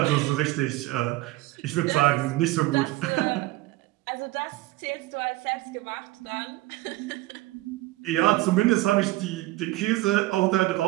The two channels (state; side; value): quieter; left; 18.4 dB